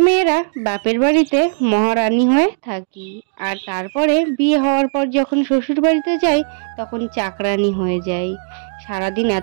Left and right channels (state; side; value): silent; left; digital silence